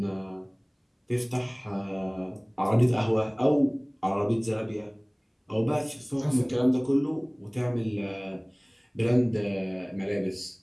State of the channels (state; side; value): identical; both; correlation 1.00